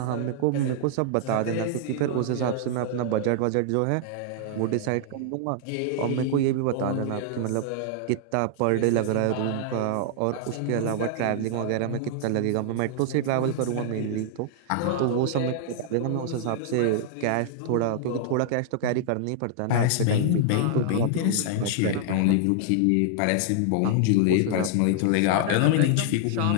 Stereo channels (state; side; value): different; both; correlation -0.01